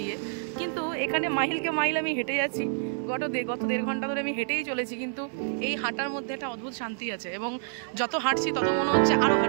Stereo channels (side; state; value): left; silent; digital silence